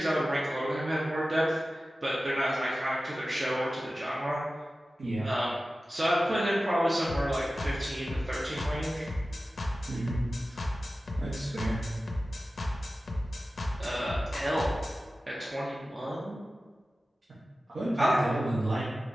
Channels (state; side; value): normal; both; correlation 0.95